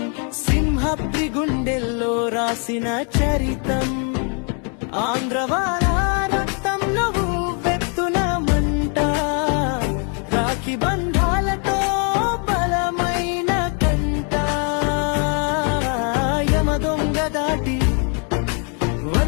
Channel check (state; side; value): quieter; right; 40.0 dB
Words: సింహప్రి గుండెల్లో రాసిన చరితం. ఆంధ్రవాల రక్తంలో వెత్తున మంట, రాఖీ బంధాలతో బలమైన కంట, యమదొంగ దాటి